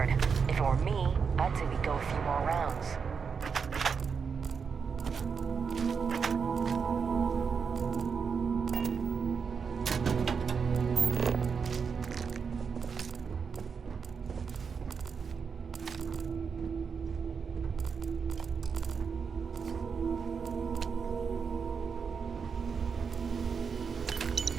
If it were me, I'd say we go a few more rounds.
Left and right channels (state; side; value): quieter; left; 5.9 dB